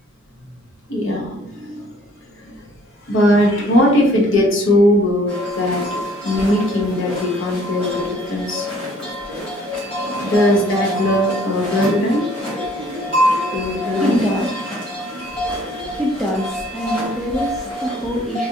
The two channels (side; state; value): both; normal; correlation 0.58